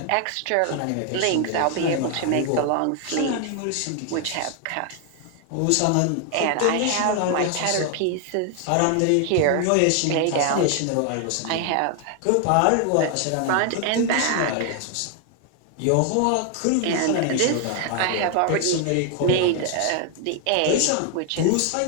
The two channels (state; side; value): different; both; correlation 0.00